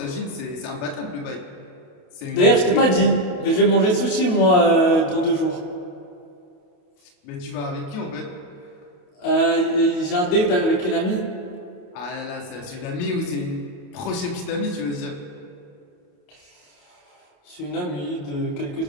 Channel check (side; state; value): right; late; 28 ms